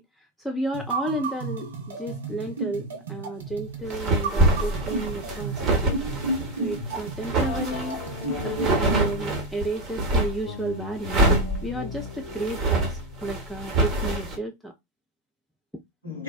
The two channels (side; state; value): both; normal; correlation 0.11